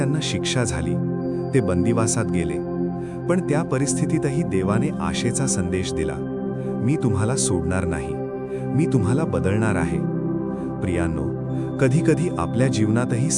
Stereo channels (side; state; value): both; identical; correlation 1.00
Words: शिक्षा झाली. ते बंदिवासात गेले. पण त्या परिस्थितीतही देवाने आशेचा संदेश दिला. मी तुम्हाला सोडणार नाही. मी तुम्हाला बदलणार आहे. प्रियांनो, कधीकधी आपल्या जीवनातही